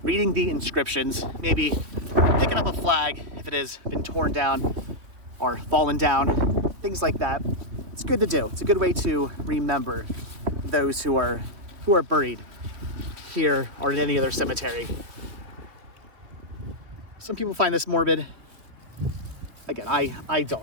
maybe picking up a flag if it has been torn down or fallen down, things like that. It's good to do. It's a good way to remember those who are buried here or in any other cemetery. Some people find this morbid. Again, I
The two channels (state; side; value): late; left; 2.9 ms